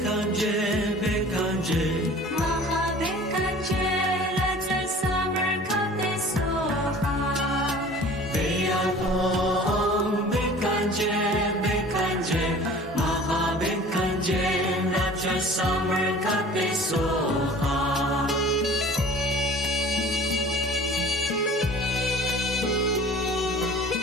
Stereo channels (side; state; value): both; normal; correlation 0.45